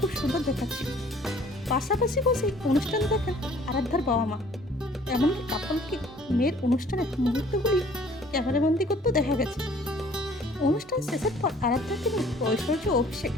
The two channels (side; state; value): both; normal; correlation 0.55